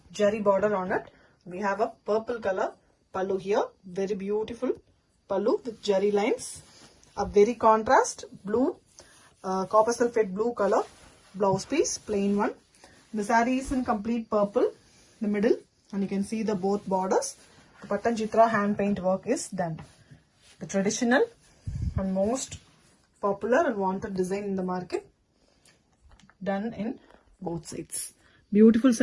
jerry border on it. We have a purple color pallu here, very beautiful pallu with jerry lines, a very contrast blue, copper sulphate blue color blouse piece, plain one. The saree is in complete purple, the middle, and you can see the both borders. The Patanjitra hand paint work is done. The traditional and most popular and wanted design in the market, done in both sides. Beautiful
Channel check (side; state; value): both; identical; correlation 1.00